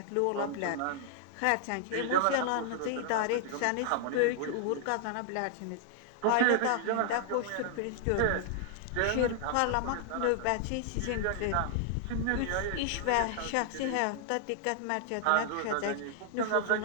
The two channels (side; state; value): both; different; correlation -0.01